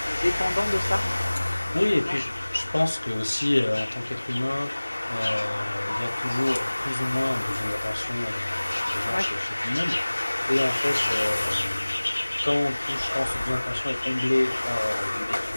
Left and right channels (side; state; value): both; inverted; correlation -1.00